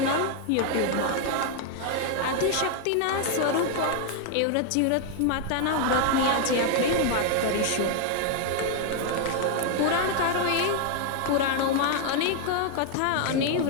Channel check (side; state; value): both; different; correlation 0.00